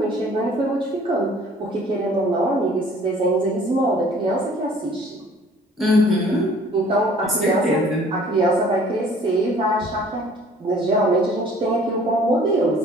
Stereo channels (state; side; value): normal; both; correlation 0.53